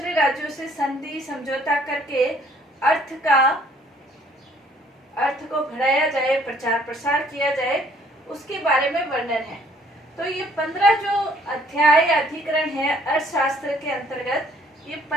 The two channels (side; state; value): both; normal; correlation 0.61